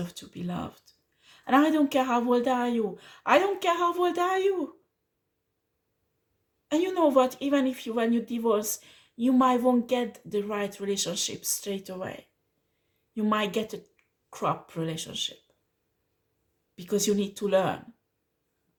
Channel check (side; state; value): both; identical; correlation 1.00